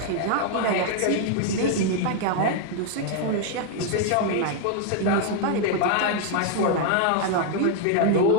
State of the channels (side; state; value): both; different; correlation 0.00